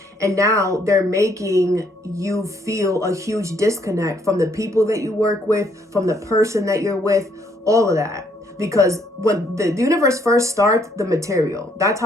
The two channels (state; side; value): normal; both; correlation 0.69